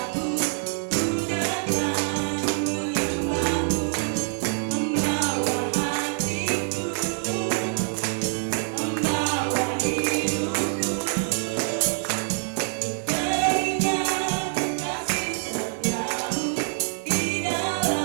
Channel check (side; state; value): left; silent; 61 dB below the other